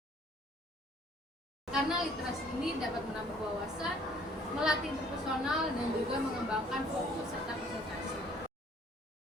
Karena literasi ini dapat menambah wawasan, melatih interpersonal, dan juga mengembangkan fokus serta konsentrasi.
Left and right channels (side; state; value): both; normal; correlation 0.58